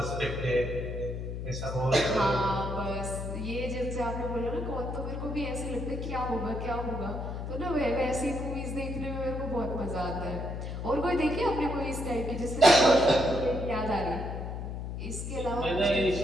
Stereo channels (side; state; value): left; noise; hum, 5 dB below the sound